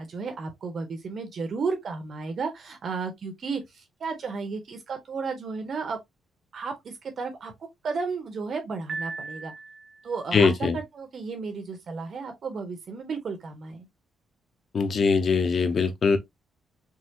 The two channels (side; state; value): both; normal; correlation 0.79